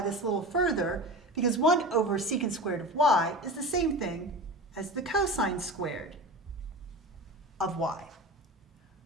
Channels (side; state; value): both; normal; correlation 0.31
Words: this a little further because 1 over secant squared of y is the same thing as the cosine squared of y.